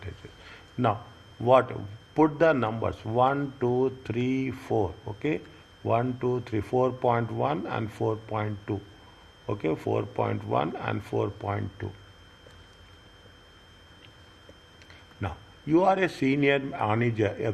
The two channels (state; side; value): identical; both; correlation 1.00